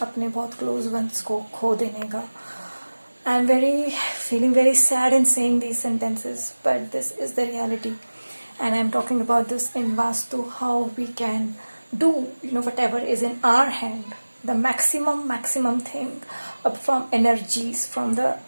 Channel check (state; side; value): inverted; both; correlation -1.00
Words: अपने बहुत क्लोज वंस को खो देने का. I am feeling very sad in saying these sentences, but this is the reality. And I'm talking about this in Vastu, how we can do, whatever is in our hand, the maximum thing, from energies, from the